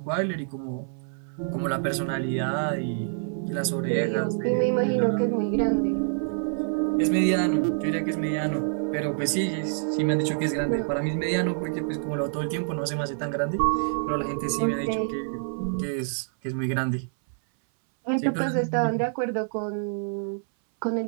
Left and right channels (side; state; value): left; silent; 60 dB below the other